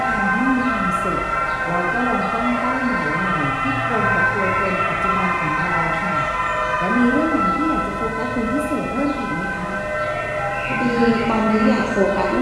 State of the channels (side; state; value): both; identical; correlation 1.00